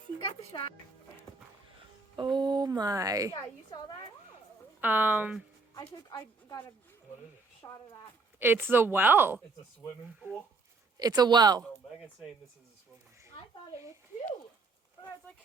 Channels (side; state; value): left; quieter; 3.9 dB